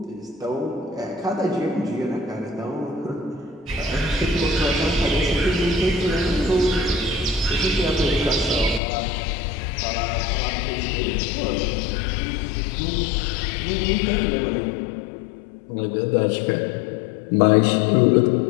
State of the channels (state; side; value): drops out; right; at 8.8 s